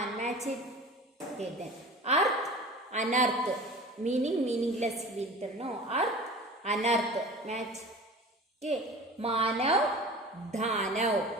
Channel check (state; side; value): normal; both; correlation 0.38